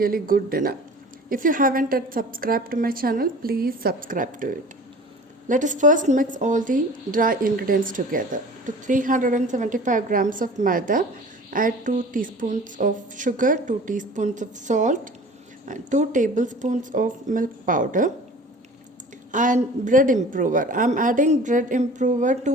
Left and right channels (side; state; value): both; normal; correlation 0.43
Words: good dinner. If you haven't yet subscribed to my channel, please subscribe to it. Let us first mix all the dry ingredients together. To 375 grams of maida, add 2 teaspoons of sugar, 2 teaspoons of salt, and 2 tablespoons of milk powder, and bread improver. I'm adding bread improver